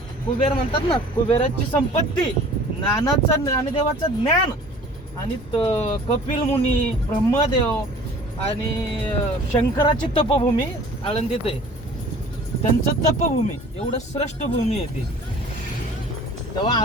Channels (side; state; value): both; normal; correlation 0.48